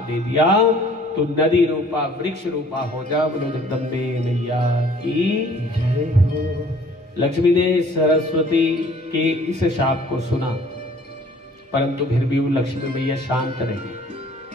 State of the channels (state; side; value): normal; both; correlation 0.54